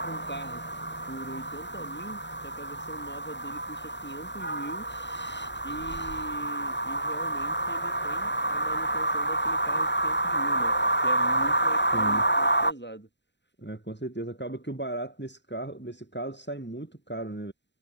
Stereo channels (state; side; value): late; right; 0.52 ms